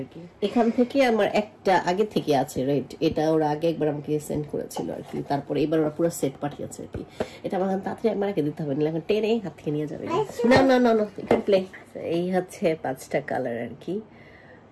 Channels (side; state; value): both; identical; correlation 1.00